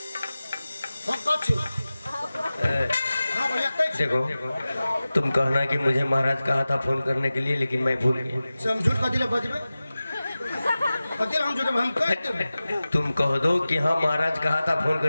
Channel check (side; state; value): both; inverted; correlation -0.96